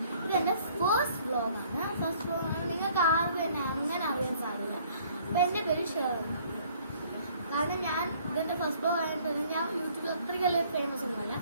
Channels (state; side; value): inverted; both; correlation -0.59